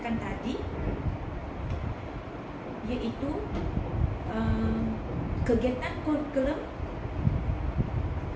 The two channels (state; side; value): identical; both; correlation 1.00